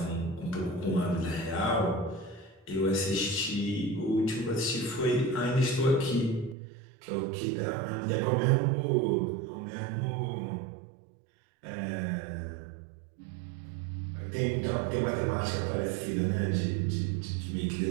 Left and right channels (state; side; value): drops out; left; at 6.6 s